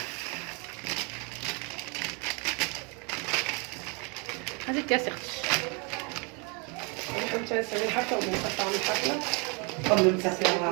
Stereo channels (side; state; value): left; quieter; 32.5 dB